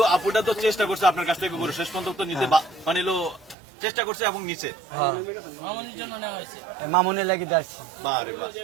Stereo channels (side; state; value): left; drops out; at 3.6 s